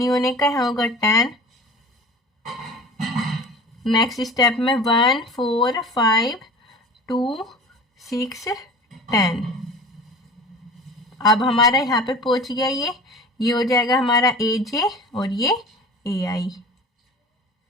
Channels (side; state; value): both; normal; correlation 0.39